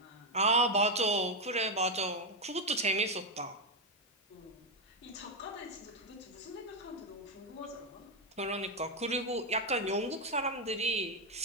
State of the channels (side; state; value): both; normal; correlation 0.04